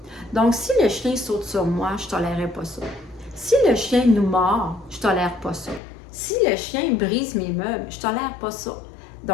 Donc, si le chien saute sur moi, je ne tolérerai pas ça. Si le chien nous mord, je ne tolère pas ça. Si le chien brise mes meubles, je ne tolère pas ça.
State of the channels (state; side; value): drops out; right; at 5.8 s